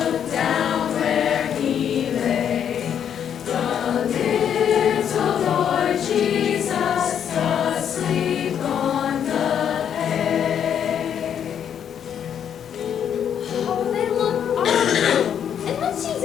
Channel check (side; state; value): right; quieter; 8.7 dB